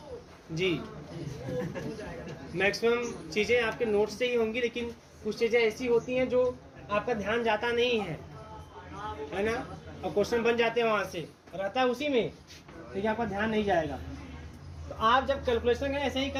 जी मैक्सिमम चीज़ें आपके नोट से ही होंगी, लेकिन कुछ चीज़ें ऐसी होती हैं जो आपका ध्यान जाता नहीं है ना, और क्वेश्चन बन जाते हैं वहाँ से, रहता है उसी में, लेकिन आपका ध्यान नहीं जाएगा। तो आप जब कैलकुलेशन करें ऐसे ही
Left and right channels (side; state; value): both; identical; correlation 1.00